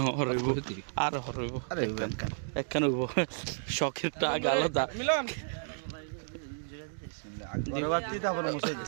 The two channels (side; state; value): left; silent; digital silence